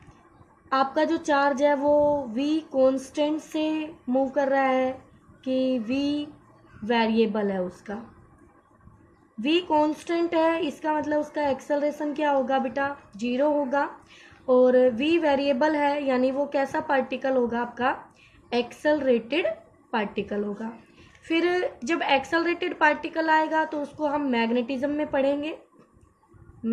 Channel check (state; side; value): identical; both; correlation 1.00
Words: आपका जो चार्ज है वो v कांस्टेंट से मूव कर रहा है कि v वेरिएबल है। उसका v कांस्टेंट है, इसका मतलब उसका एक्सेलरेशन क्या होगा बेटा, 0 होगा। और v वेरिएबल है, यानी वो कैसा पार्टिकल होगा, आपका एक्सेलरेटेड पार्टिकल होगा। फिर जब एक्सेलरेटेड पार्टिकल आएगा तो उसको हम मैग्नेटिज्म में पढ़ेंगे,